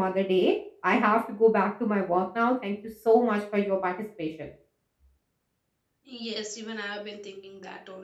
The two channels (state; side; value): identical; both; correlation 1.00